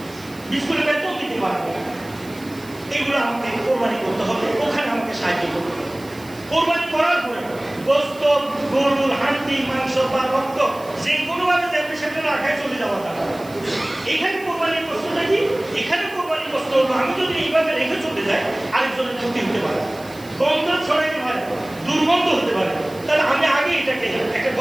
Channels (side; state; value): right; noise; hiss, 22 dB below the sound